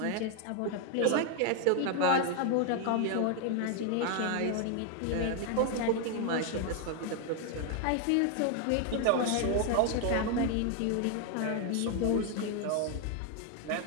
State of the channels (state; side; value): different; both; correlation 0.00